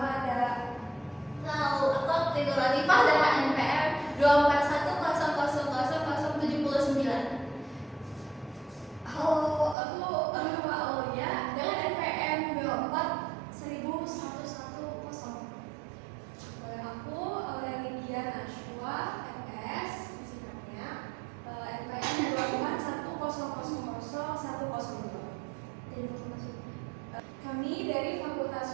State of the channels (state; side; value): drops out; left; at 9.8 s